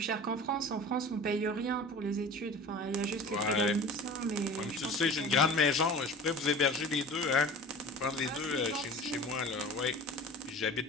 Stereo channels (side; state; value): both; normal; correlation 0.39